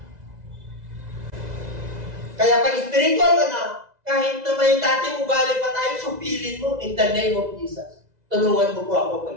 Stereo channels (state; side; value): late; left; 2.0 ms